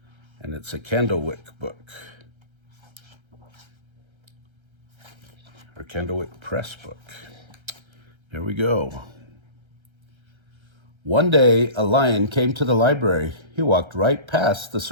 and it's a Candlewick book, or Candlewick Press book. Here we go. One day, a lion came to the library. He walked right past the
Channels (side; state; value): left; late; 1.3 ms